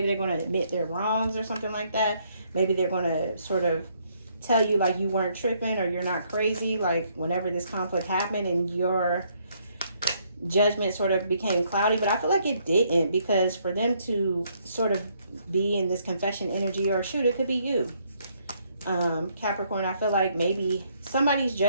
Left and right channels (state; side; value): inverted; both; correlation -0.70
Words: they're going to admit their wrongs or something like that. Maybe they're going to sort of tell you like you weren't tripping or you're not crazy. Like whenever this conflict happened and your judgment sort of became cloudy. But I feel like it didn't, because for them to sort of be in this confession energy, or shoot, it could be you. Capricorn, I feel like maybe somebody's